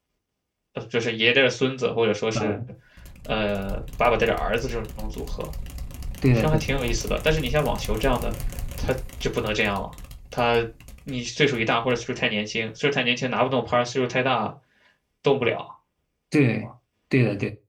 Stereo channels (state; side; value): identical; both; correlation 1.00